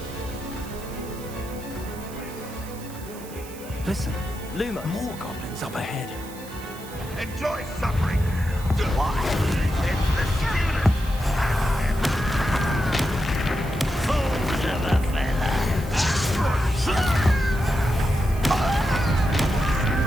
Listen, more goblins up ahead. Enjoy suffering. Why? It's the student. Fools of a fella.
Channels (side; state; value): right; noise; hiss, 17 dB below the sound